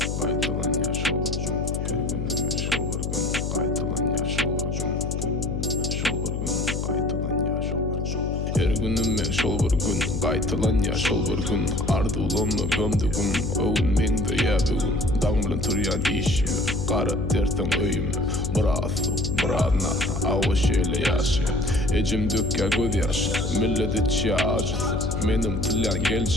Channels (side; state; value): left; noise; hum, 3 dB below the sound